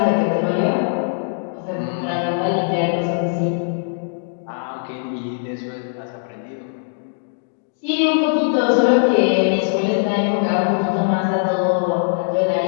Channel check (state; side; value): silent; right; digital silence